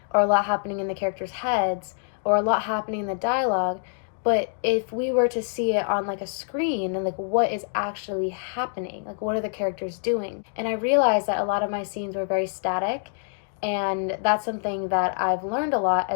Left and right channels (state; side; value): silent; right; digital silence